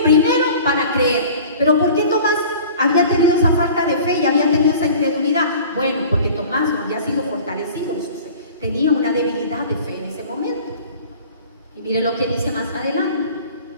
primero para creer. Pero ¿por qué Tomás había tenido esa falta de fe y había tenido esa incredulidad? Bueno, porque Tomás no había sido fortalecido en su fe. Tenía una debilidad de fe en ese momento. Y mire lo que dice más adelante,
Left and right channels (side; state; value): both; inverted; correlation -0.44